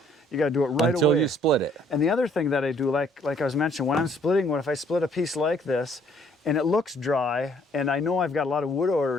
You got to do it right away. Until you split it. And the other thing that I do, like I was mentioning, when I'm splitting wood, if I split a piece like this and it looks dry, and I know I've got a lot of wood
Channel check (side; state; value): both; normal; correlation 0.63